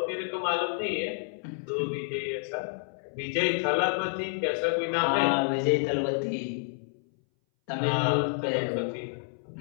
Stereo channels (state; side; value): silent; right; 59 dB below the other